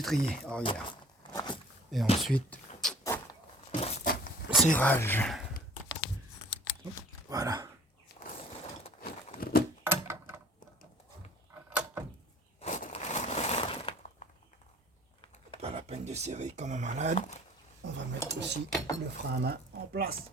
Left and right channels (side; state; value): both; normal; correlation 0.51